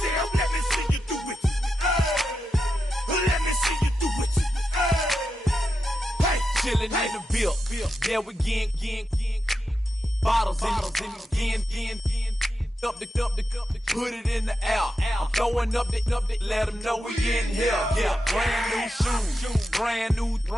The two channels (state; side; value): normal; both; correlation 0.88